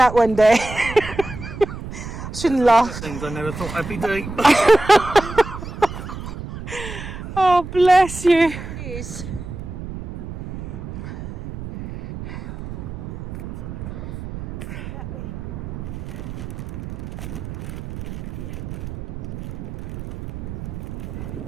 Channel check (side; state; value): right; noise; rumble, 9 dB below the sound